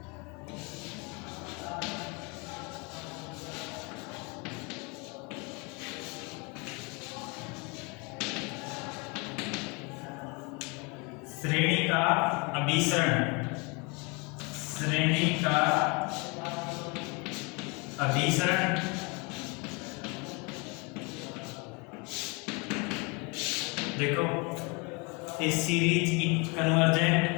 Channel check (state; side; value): quieter; right; 29.9 dB